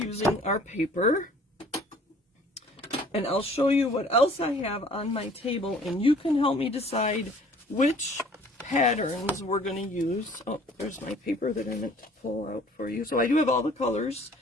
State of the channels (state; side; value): normal; both; correlation 0.53